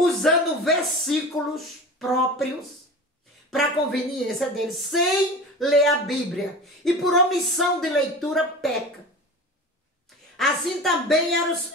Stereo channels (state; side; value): normal; both; correlation 0.34